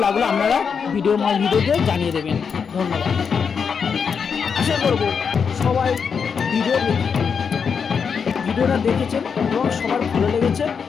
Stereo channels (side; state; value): right; quieter; 6.3 dB